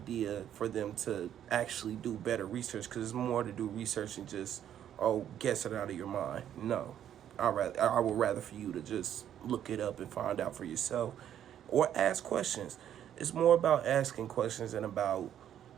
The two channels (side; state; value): left; quieter; 10.3 dB